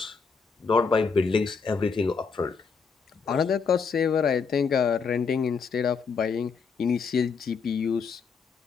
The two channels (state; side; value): quieter; right; 5.4 dB